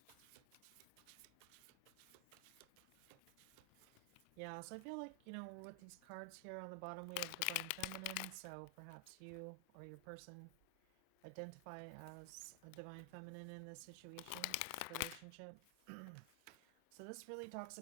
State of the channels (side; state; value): both; different; correlation 0.00